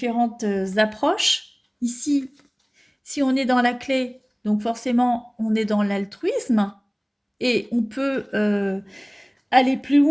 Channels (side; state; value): both; identical; correlation 1.00